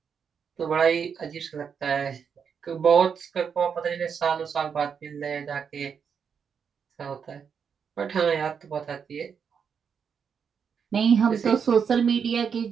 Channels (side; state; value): left; quieter; 6.8 dB